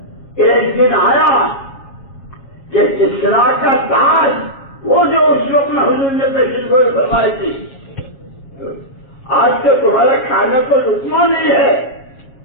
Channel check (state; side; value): late; right; 7.3 ms